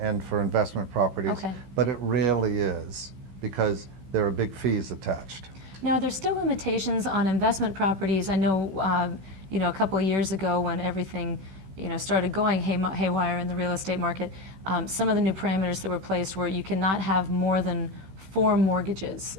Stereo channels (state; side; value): late; left; 16 ms